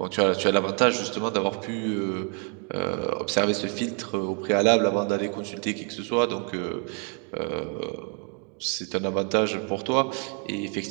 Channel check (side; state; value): left; quieter; 39.5 dB